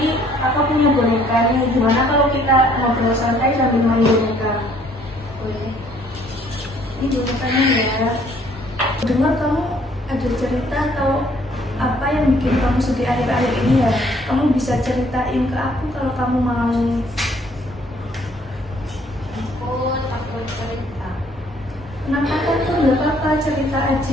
aku punya boneka nih. Gimana kalau kita ngobrol santai sambil main boneka? Boleh. Ini bonekanya ya. Dengar kamu ada cerita atau apa yang bikin kamu sedih akhir-akhir ini ya? Kamu bisa ceritain ke aku kalau kamu mau. Aku takut cerita. Kenapa kan tuh nggak apa-apa, cerita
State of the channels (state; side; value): normal; both; correlation 0.62